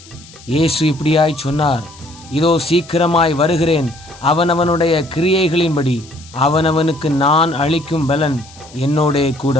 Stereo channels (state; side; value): noise; left; hiss, 22 dB below the sound